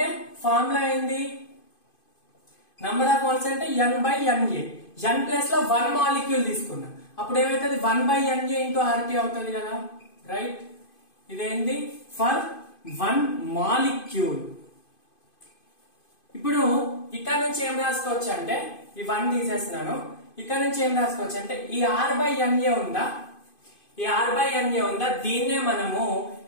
ఫార్ములా ఏంది, నంబర్ ఆఫ్ మోల్స్ అంటే n/Na. n ప్లేస్ లో 1 మాలిక్యూల్ తీసుకున్నా అప్పుడు ఏమైతుంది 1/Na ఇంటూ RT అవుతుంది కదా, రైట్. ఇదేంది ఫర్ 1 మాలిక్యూల్. ఇప్పుడు ఇక్కడ నుంచి ఏం రాసుకోవచ్చు అంటే ఈ 1 తీసేస్తున్నాను, ఇక్కడ నుంచి ఏం రాసుకోవచ్చు అంటే ఈ R/Na ఉందా, ఈ R/Na ఉందా, దీన్నే మనము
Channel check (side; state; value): right; late; 2.5 ms